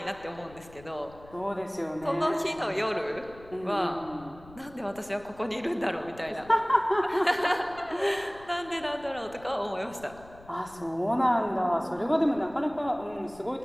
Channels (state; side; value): noise; left; rumble, 21 dB below the sound